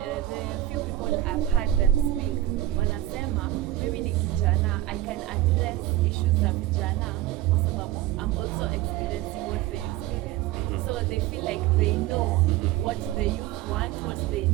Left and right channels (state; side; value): quieter; left; 14.9 dB